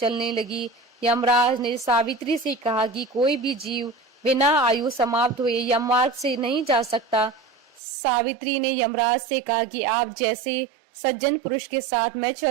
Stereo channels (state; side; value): drops out; left; at 7.8 s